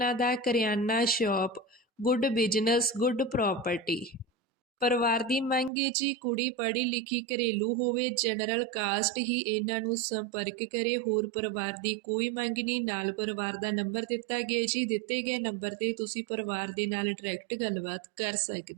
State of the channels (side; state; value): left; drops out; at 5.7 s